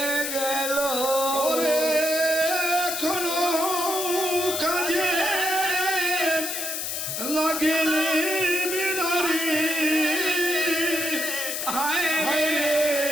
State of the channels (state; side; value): noise; left; hiss, 3 dB below the sound